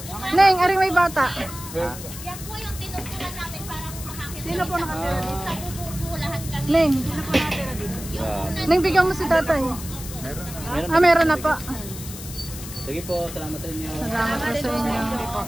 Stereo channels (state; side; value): noise; left; hiss, 12 dB below the sound